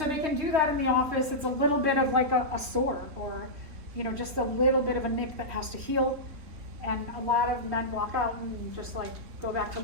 they can do that in the office. It's a little bit of like a sore, or just a little bit of a nick that has to heal. And a lot of men walk out and just like go back to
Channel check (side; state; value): left; late; 3.2 ms